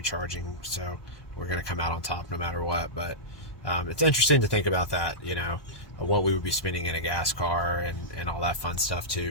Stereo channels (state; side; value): late; right; 1.2 ms